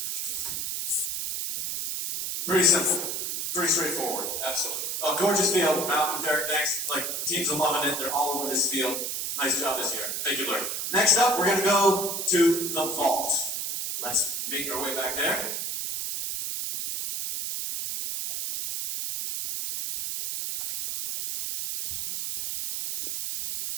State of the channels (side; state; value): right; noise; hiss, 2 dB below the sound